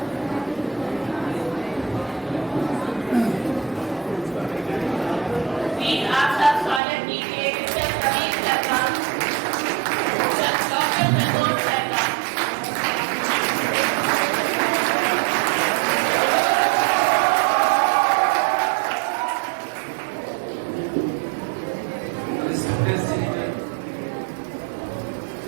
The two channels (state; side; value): drops out; left; at 6.8 s